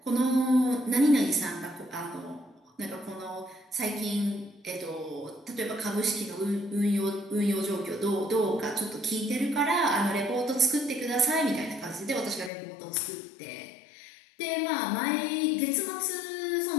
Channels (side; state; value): right; drops out; at 12.5 s